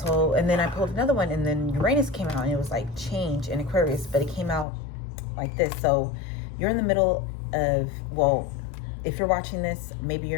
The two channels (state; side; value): drops out; right; at 4.7 s